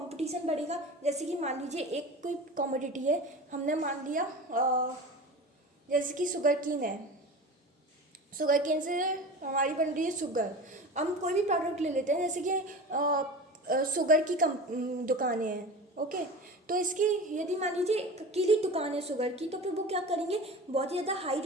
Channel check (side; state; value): both; normal; correlation 0.33